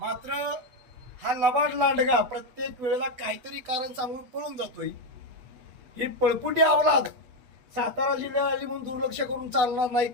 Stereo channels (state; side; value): late; left; 8.1 ms